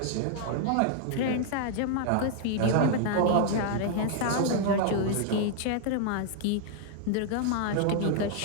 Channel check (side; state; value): both; different; correlation 0.00